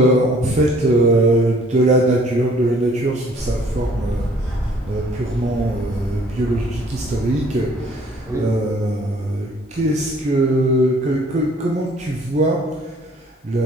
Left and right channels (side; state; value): both; normal; correlation 0.57